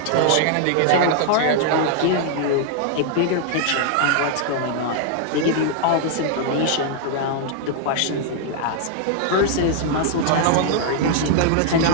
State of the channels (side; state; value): both; different; correlation 0.00